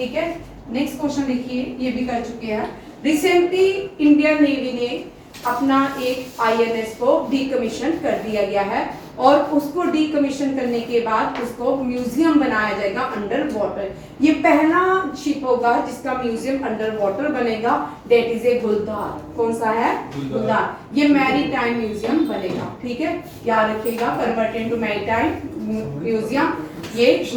है। नेक्स्ट क्वेश्चन देखिए, ये भी कर चुके हैं। रिसेंटली इंडियन नेवी ने अपना एक INS को डीकमीशन कर दिया गया है और उसको डीकमीशन करने के बाद उसको म्यूजियम बनाया जाएगा अंडर वाटर। ये पहला शिप होगा जिसका म्यूजियम अंडर वाटर बनेगा, डेट इज ए गुलदार। कौन सा है? गुलदार। ये मैरीटाइम म्यूजियम बनेगा, ठीक है, याद रखिएगा, कन्वर्ट इनटू मैरीटाइम म्यूजियम, ये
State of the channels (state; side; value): identical; both; correlation 1.00